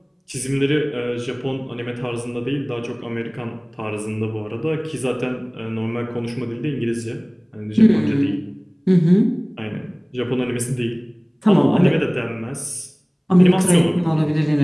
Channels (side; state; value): both; identical; correlation 1.00